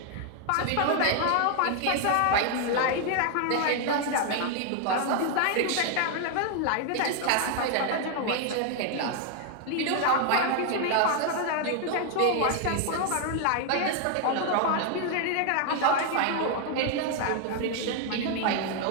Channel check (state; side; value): different; both; correlation 0.00